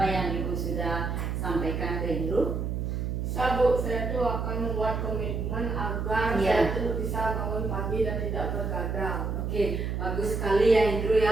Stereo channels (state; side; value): noise; right; hum, 2 dB below the sound